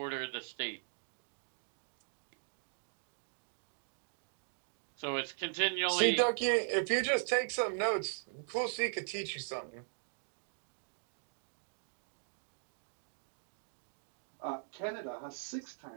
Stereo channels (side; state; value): left; silent; digital silence